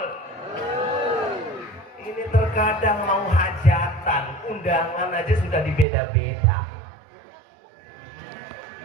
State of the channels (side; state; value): left; drops out; at 5.9 s